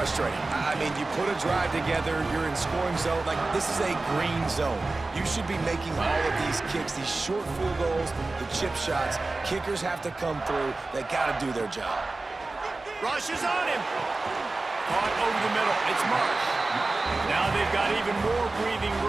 I mean, you put a drive together, you're in scoring zone. Like, this is a green zone. You should be making all of these kicks, these short field goals, the chip shots. Kickers have to come through. They got to do their job. Rush is on him. Caught over the middle. It's Marsh. Now they've got even more breathing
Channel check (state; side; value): quieter; left; 3.3 dB